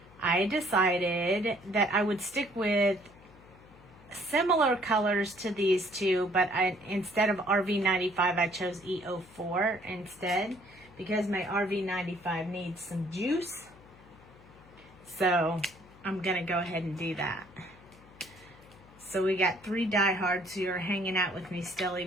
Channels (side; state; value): left; noise; hum, 24 dB below the sound